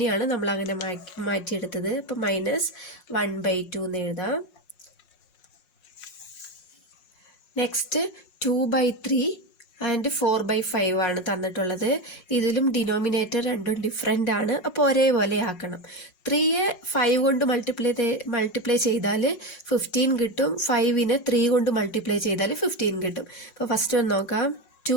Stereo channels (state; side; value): late; right; 5.5 ms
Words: നമ്മൾ അങ്ങനെ മാറ്റിയെടുത്തത്. അപ്പോൾ -1/2 എന്ന് എഴുതാം. നെക്സ്റ്റ് 2/3 ആൻഡ് 4/5 ആണ് തന്നിട്ടുള്ളത്. ഇതിലും ഡിനോമിനേറ്റർ രണ്ടും ഡിഫറെൻ്റ് ആണ്, അപ്പോൾ ഒരേപോലെ ആക്കണം. 3യെ 5 കൊണ്ട് മൾട്ടിപ്ലൈ ചെയ്താൽ 15 കിട്ടും. 5നെ 3 കൊണ്ട് മൾട്ടിപ്ലൈ ചെയ്താൽ 15 കിട്ടും. അപ്പോൾ ഫസ്റ്റ് ഒന്ന് നോക്കാം.